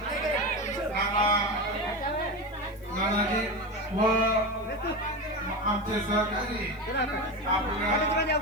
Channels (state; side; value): noise; left; hiss, 30 dB below the sound